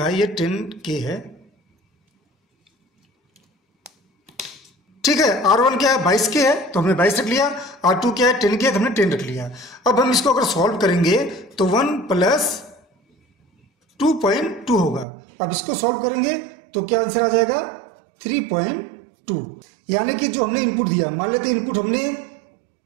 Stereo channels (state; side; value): drops out; left; at 15.1 s